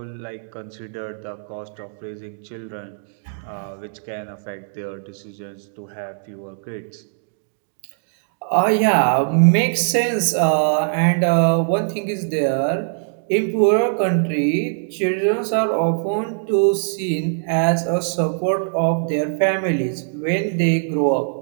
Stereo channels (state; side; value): silent; left; digital silence